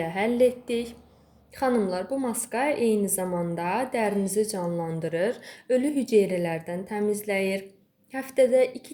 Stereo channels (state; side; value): identical; both; correlation 1.00